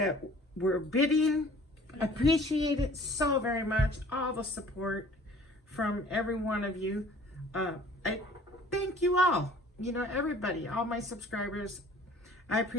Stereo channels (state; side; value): normal; both; correlation 0.50